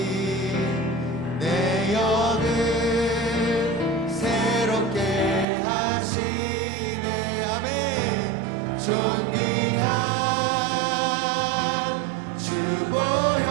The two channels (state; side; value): drops out; left; at 5.5 s